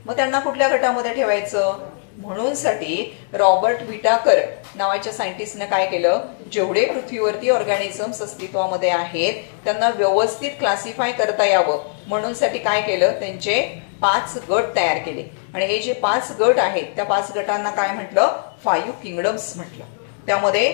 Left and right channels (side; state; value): right; silent; digital silence